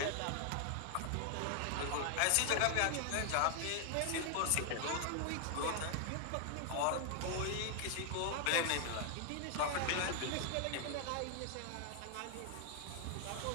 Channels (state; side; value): different; both; correlation 0.00